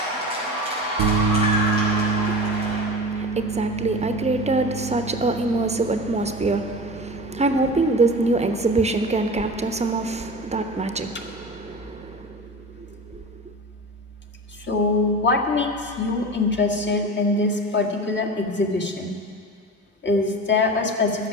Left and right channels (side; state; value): both; normal; correlation 0.31